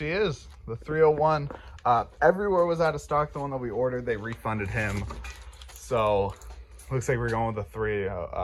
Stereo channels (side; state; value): both; identical; correlation 1.00